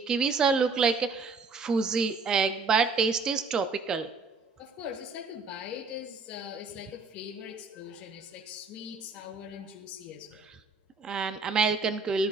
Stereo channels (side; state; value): left; quieter; 4.3 dB